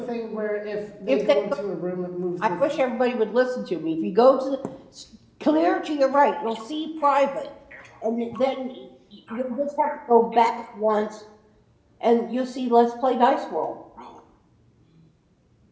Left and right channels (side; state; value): both; identical; correlation 1.00